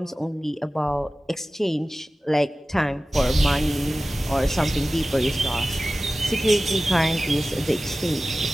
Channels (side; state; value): both; normal; correlation 0.96